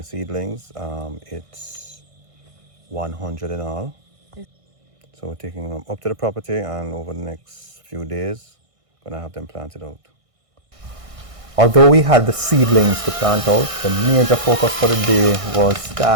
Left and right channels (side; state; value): left; late; 1.6 ms